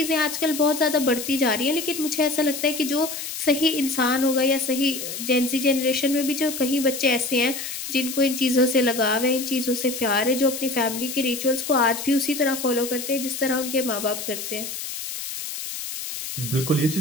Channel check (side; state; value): left; noise; hiss, 7 dB below the sound